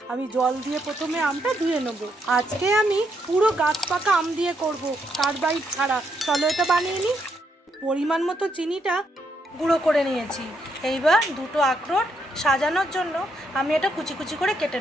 আমি জল দিয়ে প্রথমে আমটা ধুয়ে নেব। আজকে আমি পুরো গাছ পাকা আম দিয়ে করব, কার্বাইড ছাড়া। চলো এটা বানিয়ে নিই। পরিমাণ মতো চিনিটা গুঁড়ো করে নিয়েছি। এইবার দুটো আখরোট সাজানোর জন্য আমি এটা কুচি কুচি করে কেটে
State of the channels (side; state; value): both; normal; correlation 0.77